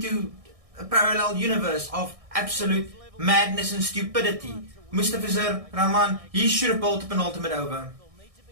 a parallel universe of absolute madness and stupidity. Mustafizur Rahman, he should have bowled a penultimate over.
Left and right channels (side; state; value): left; late; 1.6 ms